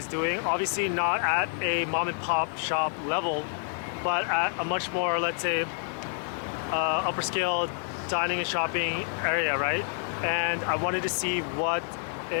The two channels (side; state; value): right; silent; 59 dB below the other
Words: doing. Obviously not at a mom and pop shop level, but at a much more, let's say, upper scale dining and shopping area, right? And I wanted to see what